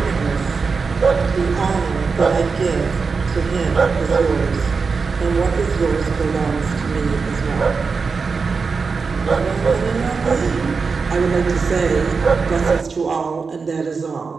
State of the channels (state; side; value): quieter; left; 4.9 dB